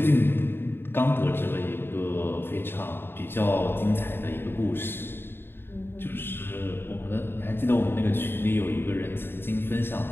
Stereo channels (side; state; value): right; late; 0.11 ms